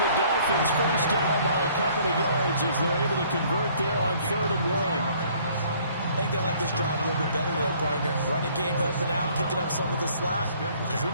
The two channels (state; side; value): inverted; both; correlation -0.59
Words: Dolphins first down by a couple of yards as they're able to convert there on 3rd and 1. I think they like this drive a little bit better there, partner. Running game helping out, picking up some of the slack. Because